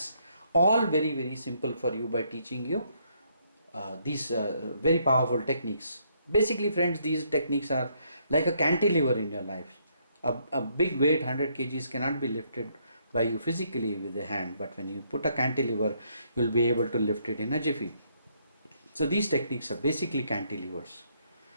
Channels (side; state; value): both; inverted; correlation -0.72